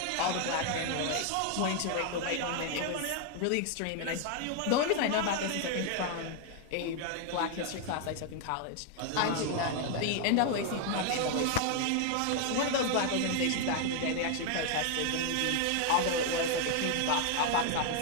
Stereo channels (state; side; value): different; both; correlation 0.00